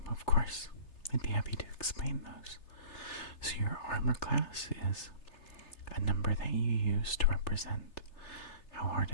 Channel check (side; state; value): right; late; 3.3 ms